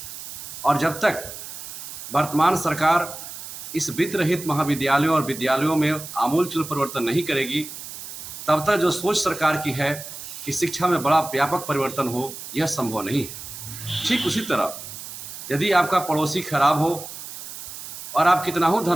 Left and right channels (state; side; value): noise; right; hiss, 11 dB below the sound